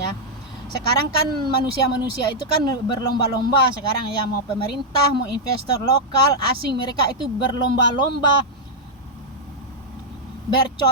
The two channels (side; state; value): both; normal; correlation -0.04